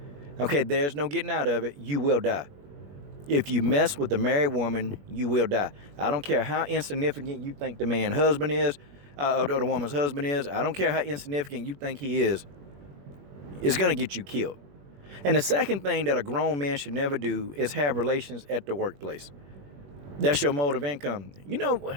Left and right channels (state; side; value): late; left; 21 ms